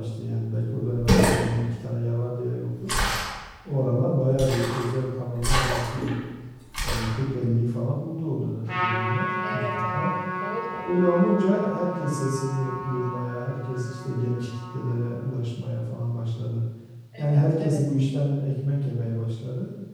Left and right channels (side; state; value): both; identical; correlation 1.00